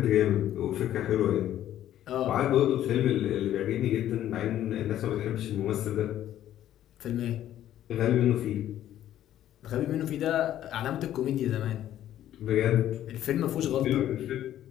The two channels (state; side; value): quieter; right; 12.1 dB